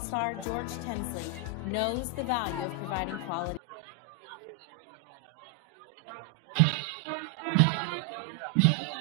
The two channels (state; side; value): drops out; left; at 3.6 s